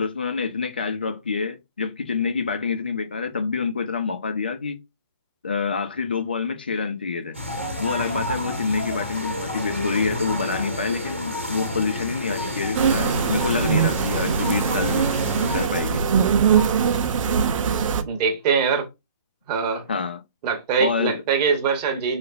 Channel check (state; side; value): inverted; both; correlation -0.50